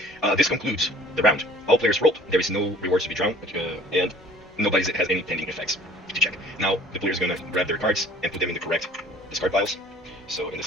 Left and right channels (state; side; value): normal; both; correlation 0.51